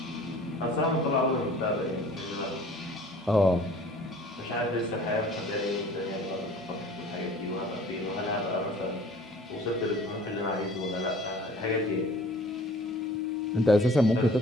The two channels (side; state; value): both; normal; correlation 0.49